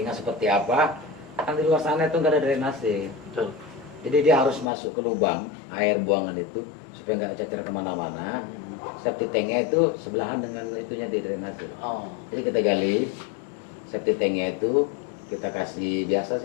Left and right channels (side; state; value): right; drops out; at 4.7 s